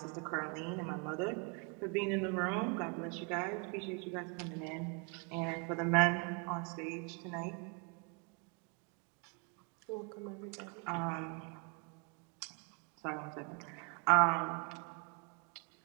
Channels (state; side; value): quieter; left; 33.1 dB